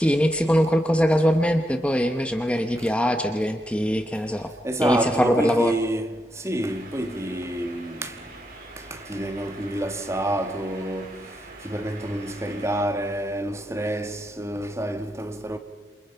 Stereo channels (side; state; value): both; normal; correlation 0.83